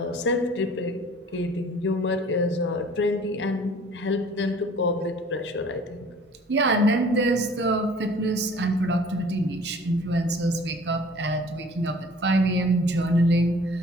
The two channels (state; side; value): normal; both; correlation 0.50